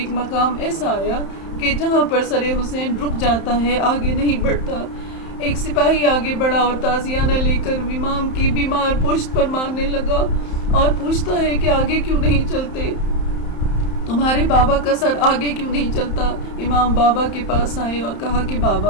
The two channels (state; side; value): late; right; 31 ms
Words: مقام ایسا آیا کہ جہاں پر سر حسین رک جاتا ہے، آگے نہیں بڑھتا. ایک سپاہی آگے بڑھا اور تازیانہ لے کر امام کی بیمار پشت پر مارنے لگا اور پوچھتا ہے کہ آگے کیوں نہیں چلتے، تمہارے بابا کا سر آگے کیوں نہیں چلتا. امام بابا کے پاس آئے اور کہا کہ